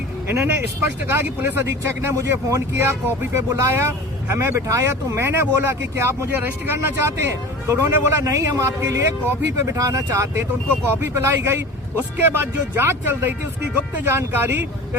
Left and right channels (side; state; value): both; normal; correlation 0.36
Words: इन्होंने स्पष्ट कहा कि पुलिस अधीक्षक ने मुझे फोन किया, कॉपी पे बुलाया, हमें बिठाया, तो मैंने बोला कि क्या आप मुझे अरेस्ट करना चाहते हैं? तो उन्होंने बोला नहीं, हम आपके लिए कॉफी पे बिठाना चाहते हैं। तो उनको कॉफी पिलाई गई। उसके बाद जो जांच चल रही थी उसकी गुप्त जानकारी